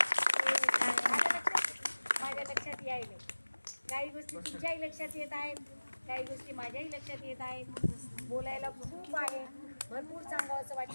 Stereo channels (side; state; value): both; inverted; correlation -1.00